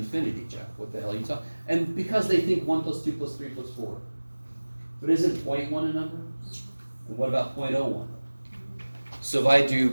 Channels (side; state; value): both; inverted; correlation -1.00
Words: Jeff. What the hell are you talking? And because they think 1 plus 2 plus 3 plus 4. But isn't 0.1 a number? And what about 0.01? So if I